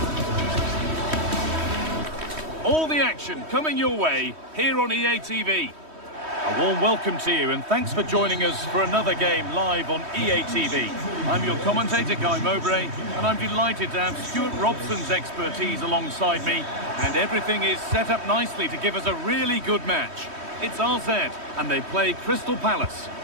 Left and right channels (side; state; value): left; late; 3.1 ms